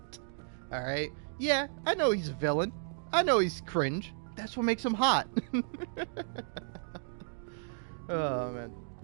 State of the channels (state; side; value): silent; left; digital silence